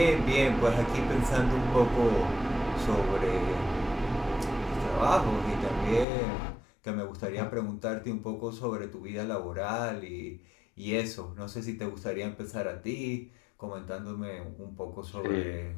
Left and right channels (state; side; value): drops out; right; at 6.1 s